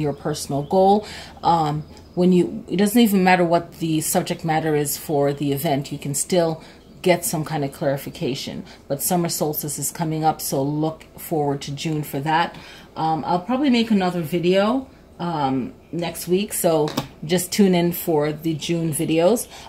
personal goal. It doesn't even matter what the subject matter is for the event, you can still get some kind of clarification. But summer solstice is coming up, so look forward to June for that. I'll probably make another video next week, so just tune in for the June videos.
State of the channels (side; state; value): both; identical; correlation 1.00